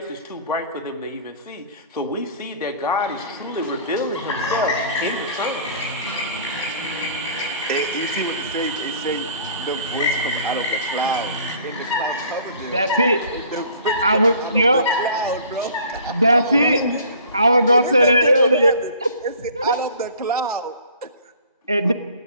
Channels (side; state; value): both; inverted; correlation -0.50